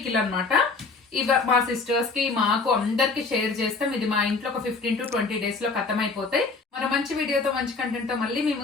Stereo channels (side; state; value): right; quieter; 4.1 dB